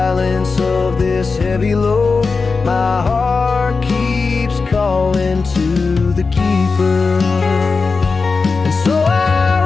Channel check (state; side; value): quieter; right; 4.4 dB